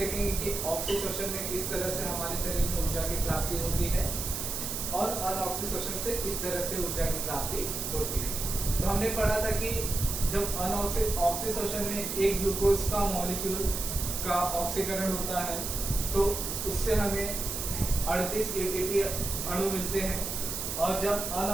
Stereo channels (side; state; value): right; noise; hiss, 4 dB below the sound